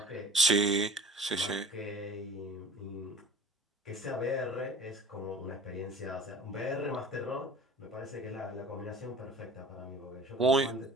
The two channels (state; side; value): normal; both; correlation 0.44